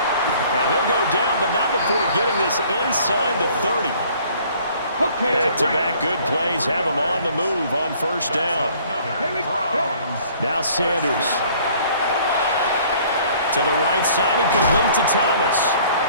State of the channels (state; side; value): inverted; both; correlation -0.56